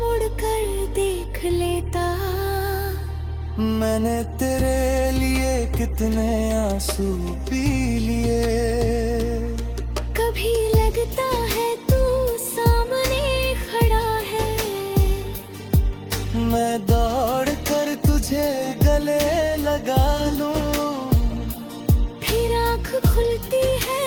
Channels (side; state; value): both; identical; correlation 1.00